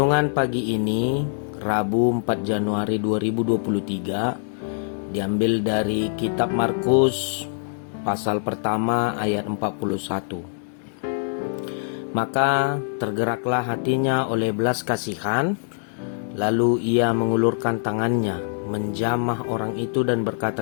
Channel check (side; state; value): right; silent; digital silence